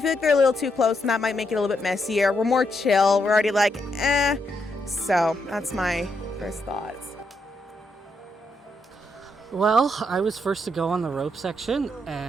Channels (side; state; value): both; normal; correlation 0.79